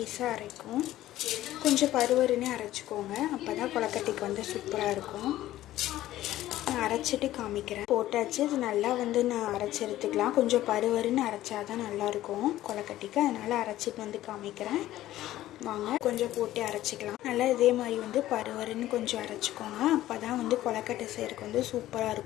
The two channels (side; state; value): right; quieter; 14.5 dB